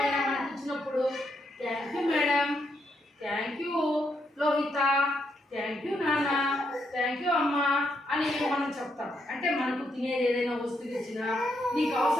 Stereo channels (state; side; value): normal; both; correlation 0.78